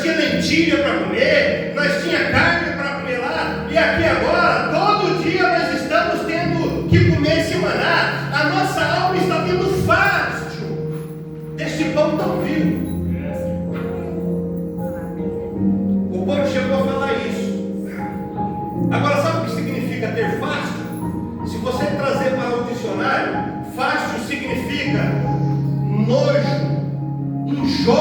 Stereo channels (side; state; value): both; identical; correlation 1.00